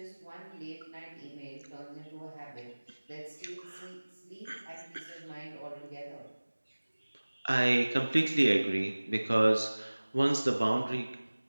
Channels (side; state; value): both; inverted; correlation -1.00